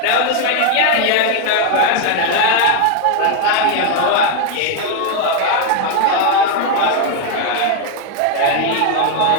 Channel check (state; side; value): different; both; correlation 0.00